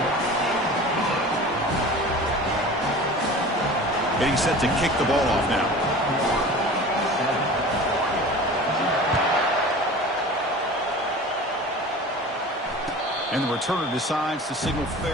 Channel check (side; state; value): both; normal; correlation 0.38